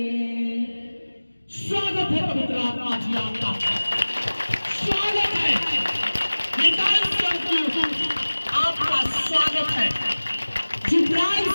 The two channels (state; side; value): inverted; both; correlation -1.00